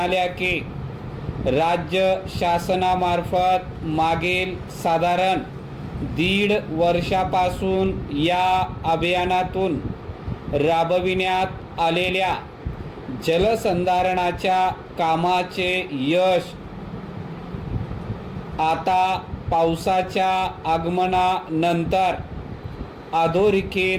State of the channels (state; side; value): identical; both; correlation 1.00